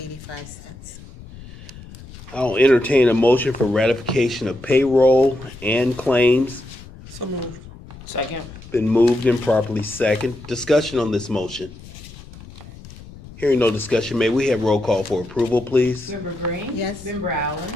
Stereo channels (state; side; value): noise; left; rumble, 17 dB below the sound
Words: I'll entertain a motion for ratification of payroll and claims. So moved. Second. Been moved and properly second. Discussion on this motion. Hearing no discussion, may we have roll call for approval, please? Member Green. Yes. Member Allen.